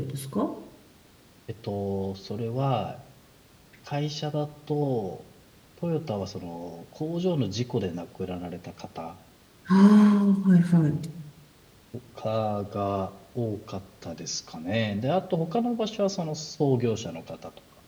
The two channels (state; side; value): identical; both; correlation 1.00